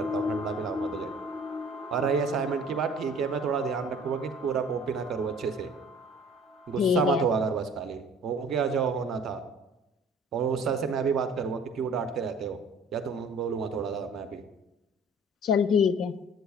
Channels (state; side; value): normal; both; correlation 0.49